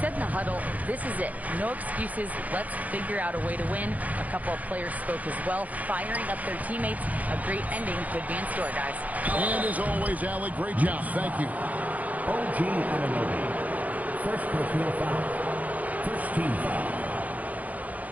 said in the huddle, this is it. No excuses. Let's figure out a way to win. A couple of players spoke as well, firing up their teammates. A great ending could be in store, guys. And as always, Allie, great job. Thank you. OG Anunoby. First personal foul. First team foul.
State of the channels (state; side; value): late; left; 0.076 ms